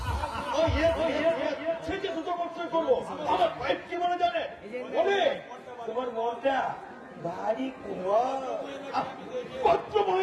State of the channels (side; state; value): both; identical; correlation 1.00